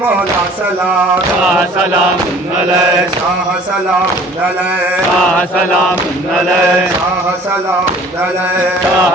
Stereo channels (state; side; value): normal; both; correlation 0.50